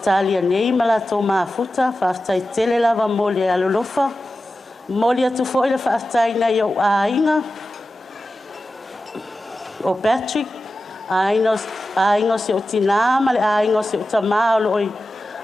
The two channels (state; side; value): normal; both; correlation 0.94